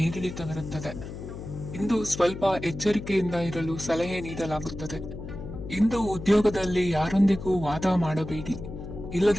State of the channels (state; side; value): noise; left; hum, 10 dB below the sound